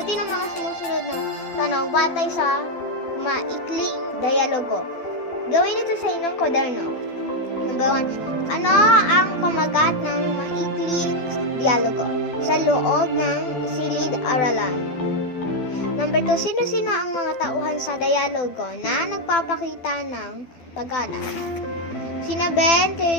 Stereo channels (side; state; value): right; late; 12 ms